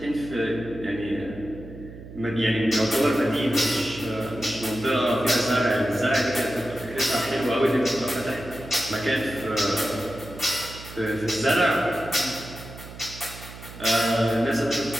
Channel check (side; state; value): right; noise; hum, 15 dB below the sound